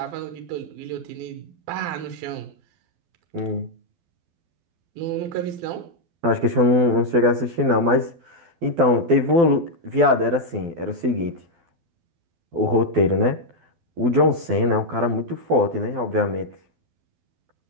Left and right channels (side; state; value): left; late; 12 ms